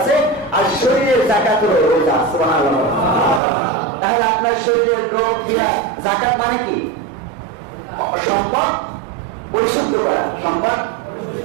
আর শরীরের যাকাত হলো রোজা। সুবহানাল্লাহ। তাহলে আপনার শরীরের রোগ বিলাই, যাকাত মানে কি? সম্পদ পরিশুদ্ধ করা। সম্পদ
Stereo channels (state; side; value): drops out; left; at 3.4 s